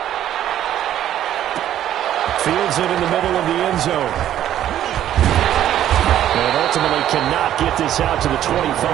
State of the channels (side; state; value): left; quieter; 11.6 dB